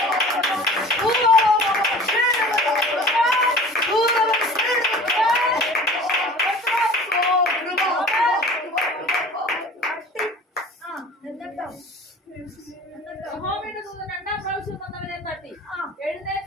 യഹോവയുടെ ദൂതൻ രണ്ടാം പ്രാവശ്യം വന്നവനെ തട്ടി,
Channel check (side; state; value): both; normal; correlation 0.43